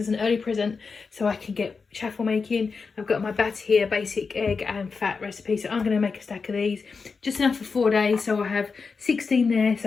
an early present so I can get chaffle making. I've got my batter here, basic egg and fat recipe. So I'm going to make a stack of these. Just enough for 4 days. So I have 16 there.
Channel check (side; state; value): right; quieter; 4.9 dB